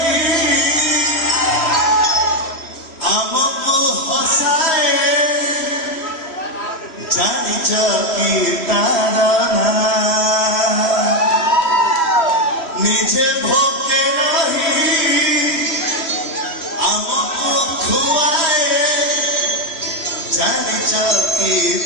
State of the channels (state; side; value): late; right; 3.0 ms